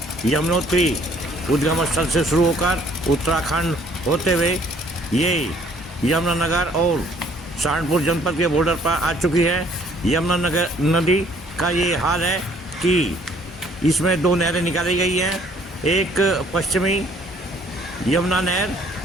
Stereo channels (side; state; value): both; normal; correlation 0.60